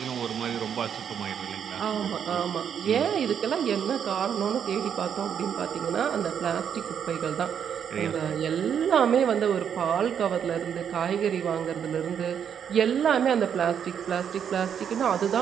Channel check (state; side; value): quieter; left; 8.2 dB